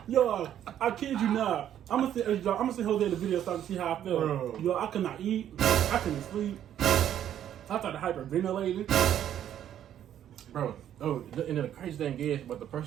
Yo, I kid you not. I'm gonna see Jose the video so I can see how I felt. Bro. Yo, I could not eat. I couldn't sleep. I started hyperventilating. bro. Oh, and then the crazy thing is, but the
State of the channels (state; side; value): quieter; left; 10.6 dB